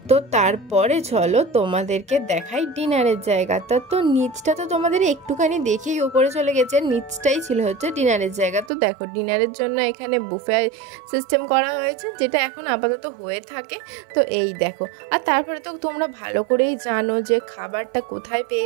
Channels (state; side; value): drops out; left; at 8.7 s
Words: তো তারপরে চলো তোমাদেরকে দেখাই ডিনারের জায়গাটা। তো নিচটা তো তোমাদের একটুখানি দেখেই উপরে চলে গেছে, নিচটাই ছিল হচ্ছে ডিনারের জায়গা। তো দেখো ডিনারের জন্য এখানে বুফে সিস্টেম করা হয়েছে, যেটা এখন আপাতত হয়ে থাকে। তো এই দেখো, আর তারপরে তো তোমরা ভালো করেই জানো যে খাবারটা কোথায়